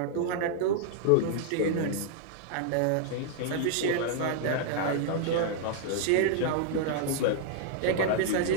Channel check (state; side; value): different; both; correlation -0.01